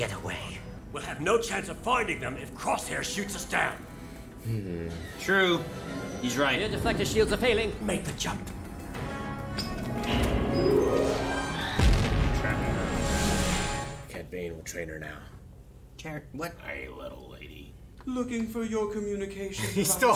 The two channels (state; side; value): identical; both; correlation 1.00